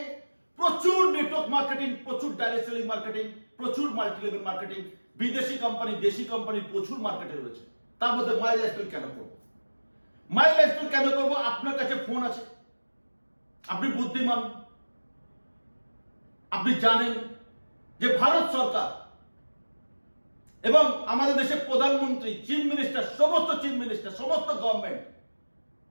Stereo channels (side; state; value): both; inverted; correlation -1.00